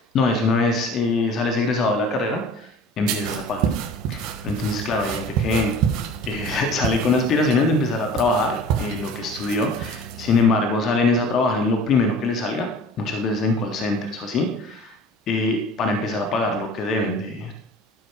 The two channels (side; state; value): both; normal; correlation 0.44